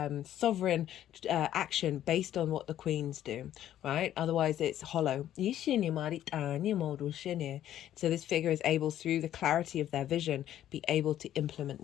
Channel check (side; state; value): right; quieter; 11.8 dB